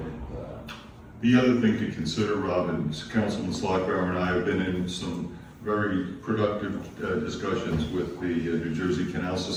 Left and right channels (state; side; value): identical; both; correlation 1.00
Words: The other thing to consider, Robin, is Councilman Slotbauer and I have been in some very productive discussions with the New Jersey Canal